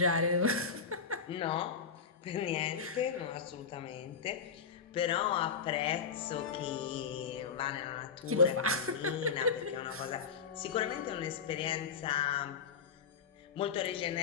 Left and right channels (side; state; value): right; quieter; 5.8 dB